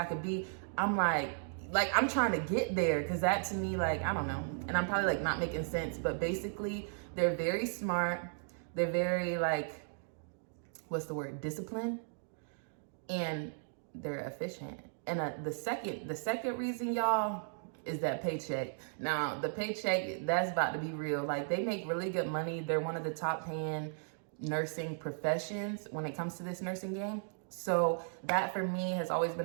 could be, I'm like I'm trying to get there, because that to me, like, I don't know, and I'm probably like not making sense, but basically they're very smart, they're very like, what's the word, disciplined, and they're efficient. And the second reason, y'all, is that paycheck. Now the paycheck, that's about to be real. Like, they make really good money. They're one of the top paying nursing professions when it comes to this nursing game. So that for me has always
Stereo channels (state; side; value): silent; left; digital silence